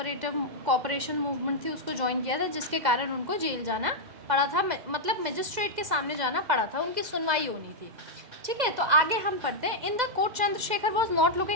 मूवमेंट थी उसको ज्वाइन किया था, जिसके कारण उनको जेल जाना पड़ा था, मतलब मजिस्ट्रेट के सामने जाना पड़ा था, उनकी सुनवाई होनी थी। ठीक है, तो आगे हम पढ़ते हैं। In the court Chandrashekhar was not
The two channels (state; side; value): late; left; 2.0 ms